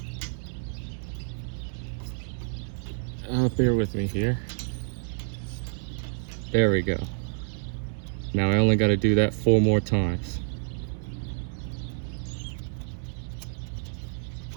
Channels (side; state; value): left; silent; 59 dB below the other